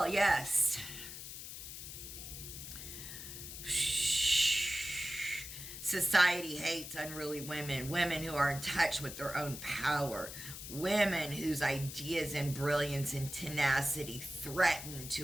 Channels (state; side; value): noise; left; hiss, 10 dB below the sound